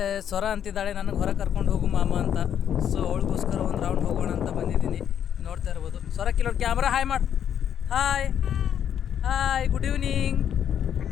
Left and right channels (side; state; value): right; quieter; 9.2 dB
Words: ಸ್ವರ ಅಂತಿದ್ದಾಳೆ ನನಗೆ ಹೊರಗೆ ಕರ್ಕೊಂಡು ಹೋಗು ಮಾಮ ಅಂತ. ಸೊ ಅವಳಿಗೋಸ್ಕರ ಒಂದು ರೌಂಡ್ ಹೋಗೋಣ ಅಂತ ಬಂದಿದ್ದೀನಿ. ನೋಡ್ತಾ ಇರ್ಬೋದು. ಸ್ವರ ಕಿಲೋ ಕ್ಯಾಮ್ರಾ ಹಾಯ್ ಮಾಡು. Hi good evening.